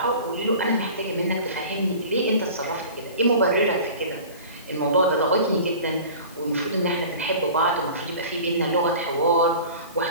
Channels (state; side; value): inverted; both; correlation -0.40